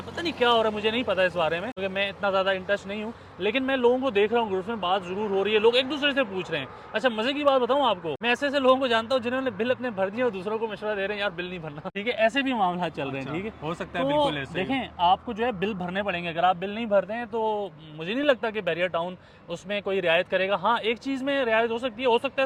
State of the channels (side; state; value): both; identical; correlation 1.00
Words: पता नहीं क्या हो रहा है, मुझे नहीं पता इस बारे में क्योंकि मैं इतना ज़्यादा इंटरेस्ट नहीं हूँ, लेकिन मैं लोगों को देख रहा हूँ, ग्रुप में बात जरूर हो रही है, लोग एक दूसरे से पूछ रहे हैं। अच्छा मजे की बात बताऊँ आपको, मैं ऐसे ऐसे लोगों को जानता हूँ जिन्होंने बिल अपने भर दिए और दूसरों को मशवरा दे रहे हैं यार बिल नहीं भरना, ठीक है, ऐसे भी मामला चल रहे हैं, ठीक है। हो सकता है, तो बिल्कुल ऐसे देखें आपको जो है बिल भरने पड़ेंगे, अगर आप बिल नहीं भरते हैं तो मुझे नहीं लगता कि बहरिया टाउन उसमें कोई रियायत करेगा। हाँ एक चीज़ में रियायत हो सकती है, हो सकता